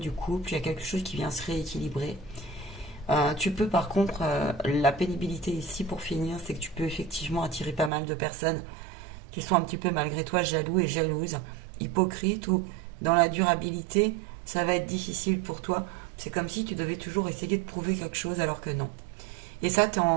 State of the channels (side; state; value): left; drops out; at 7.9 s